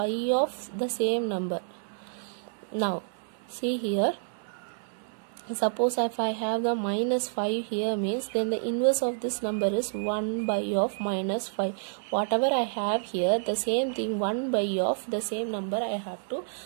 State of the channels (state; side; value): silent; left; digital silence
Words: of the same number. Now see here, suppose if I have the minus 5 here, means then the inverse of this number is 1 by of minus 5. Whatever I have here, the same thing 1 by of the same number I have to